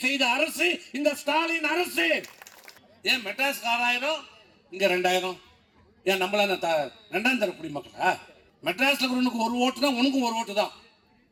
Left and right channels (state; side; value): identical; both; correlation 1.00